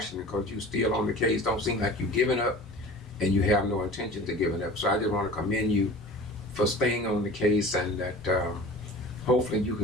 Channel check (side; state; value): both; normal; correlation 0.40